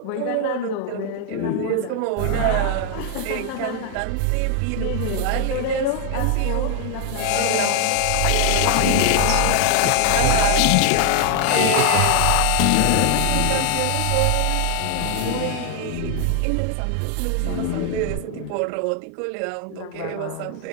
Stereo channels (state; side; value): different; both; correlation 0.00